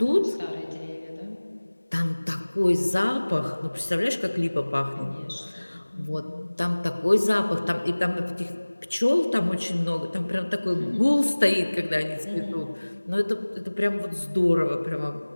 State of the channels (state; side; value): inverted; both; correlation -1.00